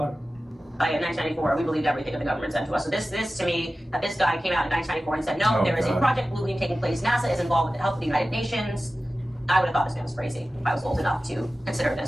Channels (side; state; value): both; normal; correlation 0.95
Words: it. In 1994, we believed everything that the government sent to us. So this to me, that this guy came out in 1994 and said, no, there is a Project Blue Beam taking place. NASA is involved with the help of the United Nations. I would have thought this man was crazy. If I was old enough to consider